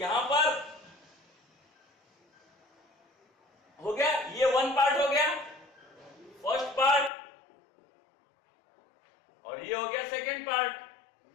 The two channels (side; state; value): right; drops out; at 7.1 s